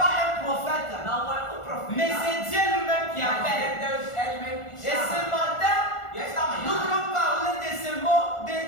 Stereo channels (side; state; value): right; late; 1.4 ms